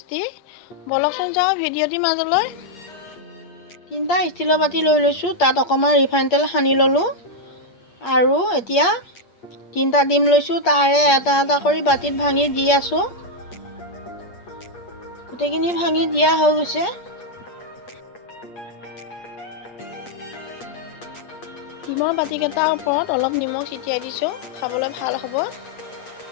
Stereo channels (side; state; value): right; late; 8.5 ms